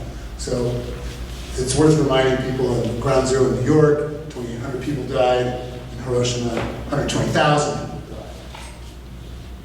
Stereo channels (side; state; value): both; identical; correlation 1.00